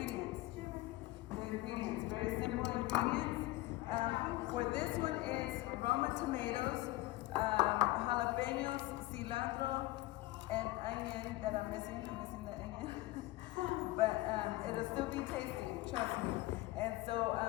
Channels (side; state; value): right; quieter; 18.6 dB